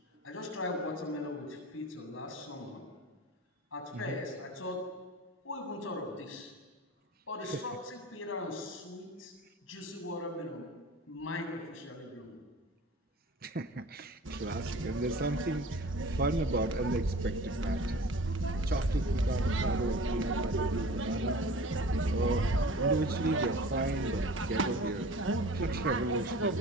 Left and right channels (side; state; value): both; normal; correlation 0.41